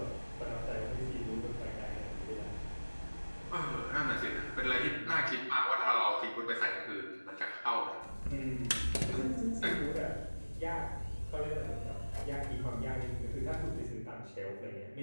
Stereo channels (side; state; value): both; inverted; correlation -1.00